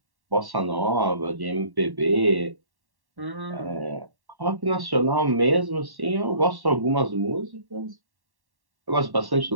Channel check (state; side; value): late; left; 1.1 ms